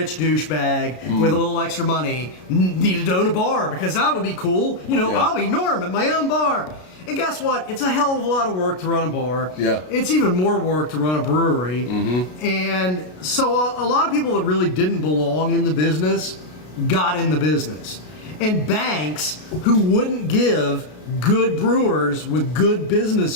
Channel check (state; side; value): late; right; 33 ms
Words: douchebag with a little extra money needed to own a bar because that would be cool. I'll be Norm at my own bar. And guess what? It's a hell of a lot of work to run a bar. Yeah. It's even more work to run a brewery. Mm-hmm. And so a lot of people that really didn't belong in the business got in the business. And banks who wouldn't give good brewers with good